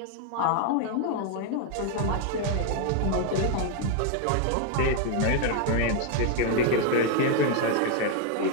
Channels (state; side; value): different; both; correlation 0.01